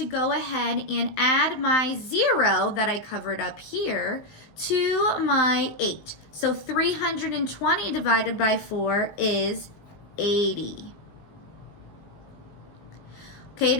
go ahead and add my 0 that I covered up here to my 8. So 320 divided by 4 is 80. Okay, it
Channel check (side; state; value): right; late; 20 ms